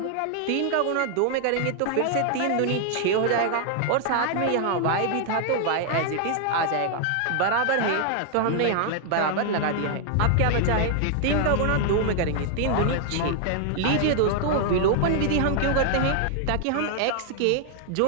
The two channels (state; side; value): different; both; correlation 0.00